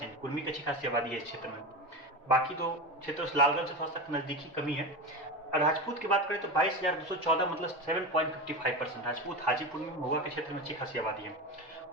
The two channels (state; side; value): normal; both; correlation 0.23